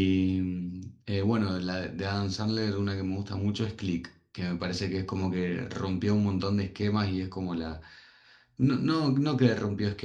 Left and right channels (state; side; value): identical; both; correlation 1.00